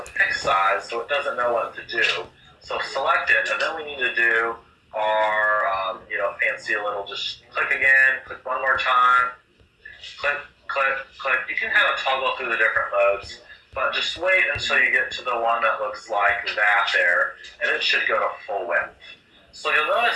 fixed size, so it doesn't know what to do. So select it, and then we need to do our, fancy little, just click again, click one more time, click, click, click. You can kind of toggle through the different modes, but just wait until you get to the one that looks like that there, and it should go to full width. So you'll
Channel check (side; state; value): both; identical; correlation 1.00